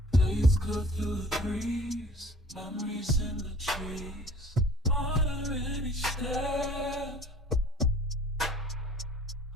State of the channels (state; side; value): normal; both; correlation 0.51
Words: blades cut through the breeze, memories in the trees. Honor in each step,